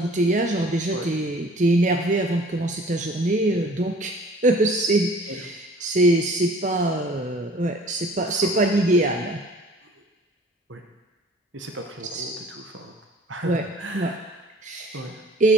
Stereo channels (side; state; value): both; normal; correlation 0.50